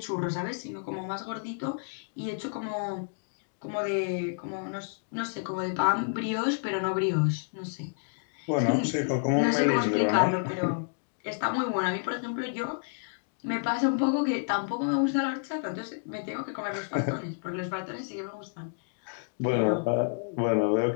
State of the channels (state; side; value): silent; right; digital silence